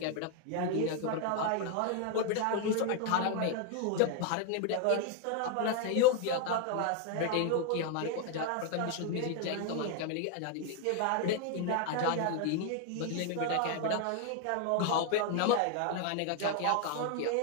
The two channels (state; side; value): different; both; correlation 0.00